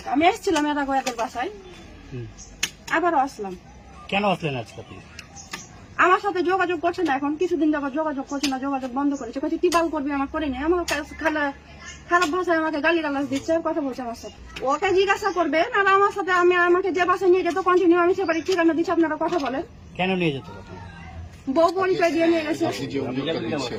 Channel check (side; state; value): both; identical; correlation 1.00